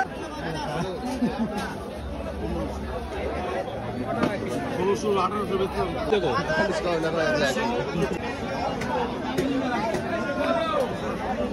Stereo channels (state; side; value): identical; both; correlation 1.00